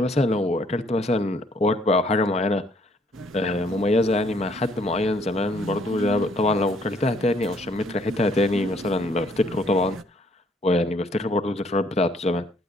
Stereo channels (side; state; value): both; normal; correlation 0.65